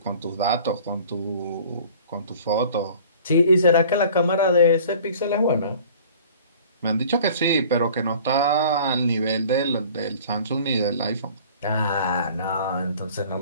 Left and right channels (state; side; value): inverted; both; correlation -0.48